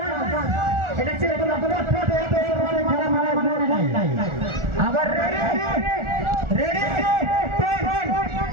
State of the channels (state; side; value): late; left; 1.4 ms